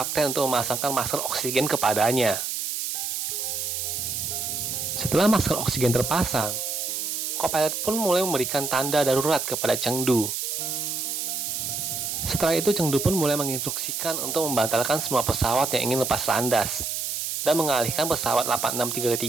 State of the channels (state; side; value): noise; right; hiss, 3 dB below the sound